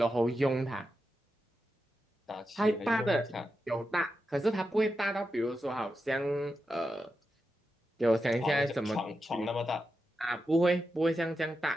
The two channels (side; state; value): both; normal; correlation 0.88